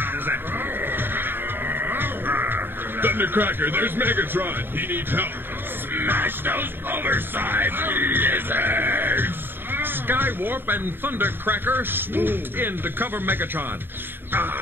Thundercracker, there's Megatron. He needs help. Smash those oversized lizards! Skywarp and Thundercracker swooped in to cover Megatron.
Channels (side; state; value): left; late; 0.099 ms